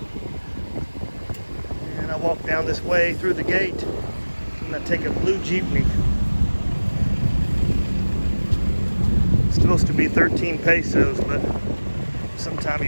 And I walk down this way through the gate, and I take a blue jeepney. It's supposed to be 13 pesos, but sometime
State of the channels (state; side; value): inverted; both; correlation -1.00